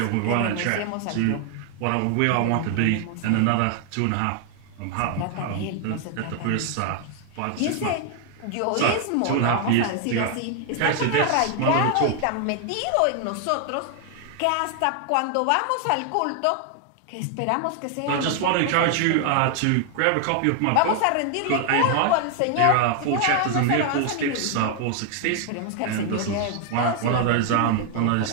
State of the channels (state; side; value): different; both; correlation 0.00